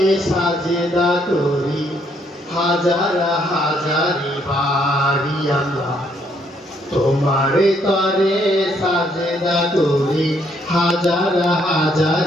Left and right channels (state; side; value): normal; both; correlation 0.70